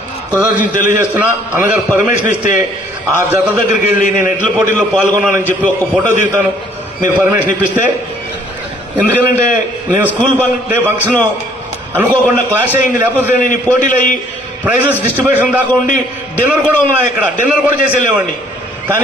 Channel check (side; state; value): both; normal; correlation 0.60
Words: కృతజ్ఞతలు తెలియజేస్తున్నా. అన్నగారు పర్మిషన్ ఇస్తే ఆ జత దగ్గరికి వెళ్ళి నేను ఎడ్ల పోటీల్లో పాల్గొన్నానని చెప్పి ఒక ఫోటో దిగుతాను, మీరు పర్మిషన్ ఇప్పిస్తే. ఎందుకంటే నేను స్కూల్ డే ఫంక్షన్ అనుకోకుండా క్లాష్ అయింది, లేకపోతే నేను ఈ పోటీలు అయ్యి ప్రైజెస్ డిస్ట్రిబ్యూషన్ దాకా ఉండి డిన్నర్ కూడా ఉన్నాయి, ఇక్కడ డిన్నర్ కూడా చేసి వెళ్ళేవాడిని.